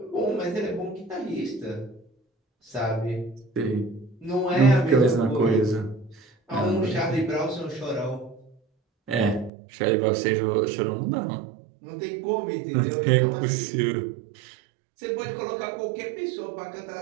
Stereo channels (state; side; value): drops out; left; at 9.5 s